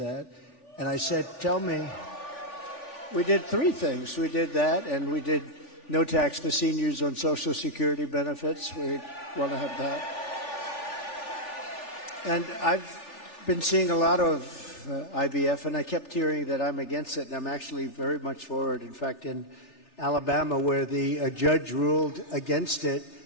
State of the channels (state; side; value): late; right; 3.4 ms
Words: And I said, tell me, we did three things. We did that, and we did no tax for seniors on Social Security benefits. We want to have that. And I've been seeing a lot of IVF, and I kept hearing that I'm against it, and I'm actually very much for it. In fact, in Alabama, where the judge ruled against it,